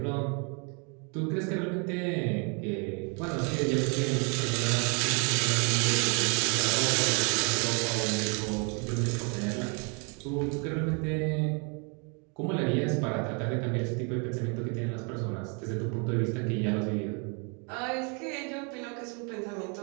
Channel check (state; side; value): quieter; left; 36.0 dB